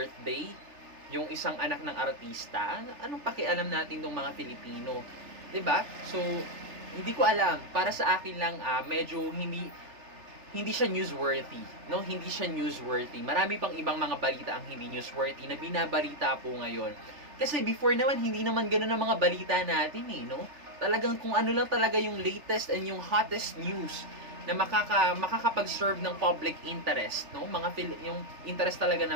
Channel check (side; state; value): left; late; 3.3 ms